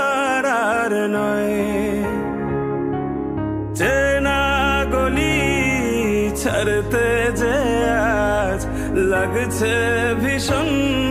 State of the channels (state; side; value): identical; both; correlation 1.00